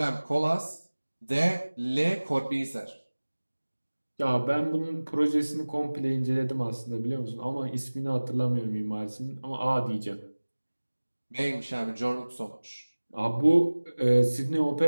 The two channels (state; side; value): inverted; both; correlation -1.00